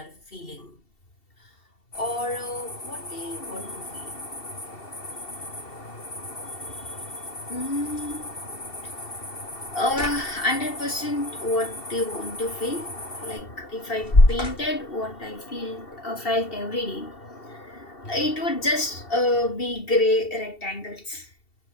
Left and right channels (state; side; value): late; right; 2.7 ms